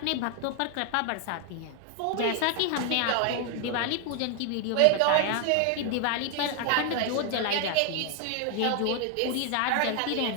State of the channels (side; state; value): both; different; correlation 0.00